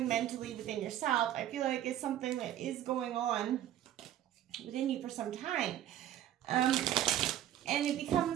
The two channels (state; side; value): quieter; left; 11.9 dB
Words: mentally within yourself, I feel like it's something that is going on within you for some time. And it